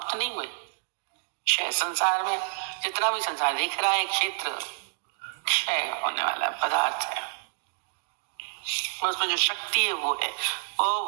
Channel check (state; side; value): silent; left; digital silence